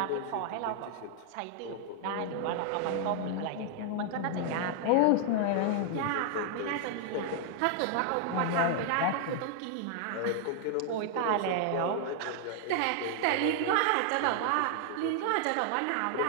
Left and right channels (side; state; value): both; different; correlation 0.00